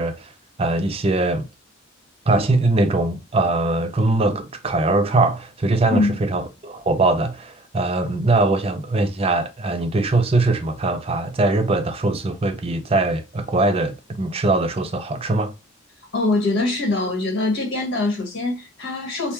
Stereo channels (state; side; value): normal; both; correlation 0.51